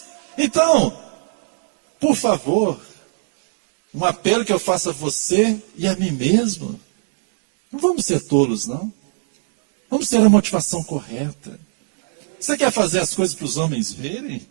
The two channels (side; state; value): left; silent; digital silence